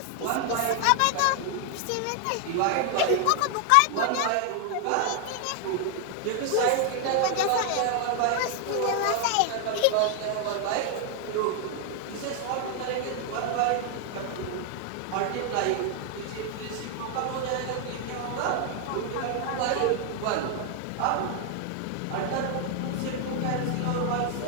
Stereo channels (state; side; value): different; both; correlation 0.00